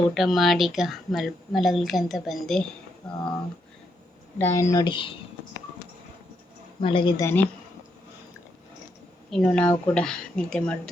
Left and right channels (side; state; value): both; normal; correlation 0.79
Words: ಊಟ ಮಾಡಿ ಈಗ ಮಲಗಲಿಕ್ಕೆ ಅಂತ ಬಂದೆ. ರಾಯನ್ ನೋಡಿ ಮಲಗಿದ್ದಾನೆ. ಇನ್ನು ನಾವು ಕೂಡ ನಿದ್ದೆ